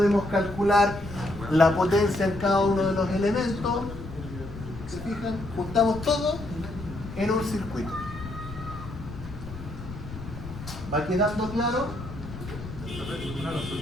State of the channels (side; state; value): left; noise; rumble, 11 dB below the sound